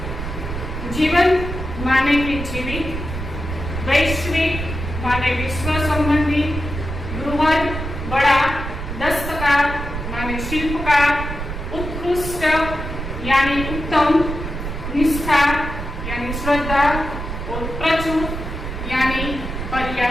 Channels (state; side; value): noise; right; rumble, 6 dB below the sound